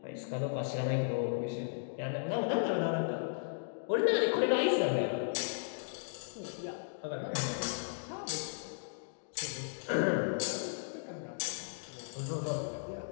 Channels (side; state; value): right; silent; digital silence